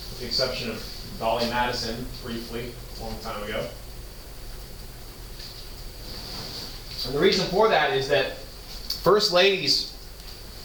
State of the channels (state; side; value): identical; both; correlation 1.00